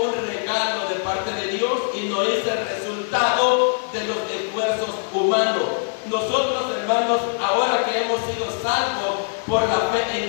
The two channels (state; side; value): silent; right; digital silence